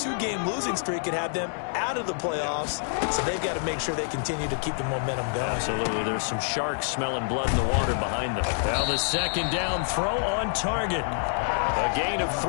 losing streak could have them out of the playoffs, so they've got to make sure they continue to keep the momentum going. Absolutely. There's some sharks smelling blood in the water behind them. Well, the second down throw on target. A gain of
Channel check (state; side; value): silent; right; digital silence